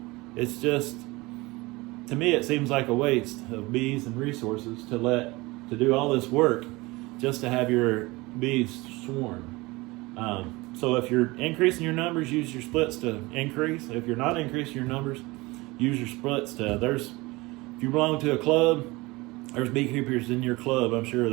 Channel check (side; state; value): left; quieter; 22.5 dB